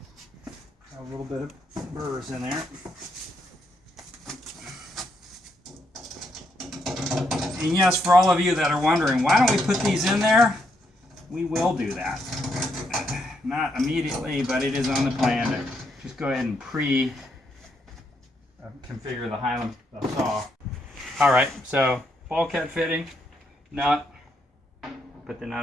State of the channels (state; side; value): normal; both; correlation 0.77